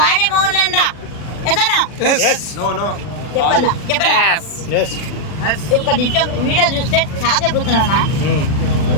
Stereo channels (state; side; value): late; right; 40 ms